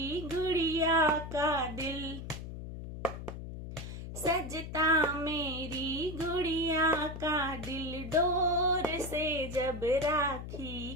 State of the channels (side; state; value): left; noise; hum, 9 dB below the sound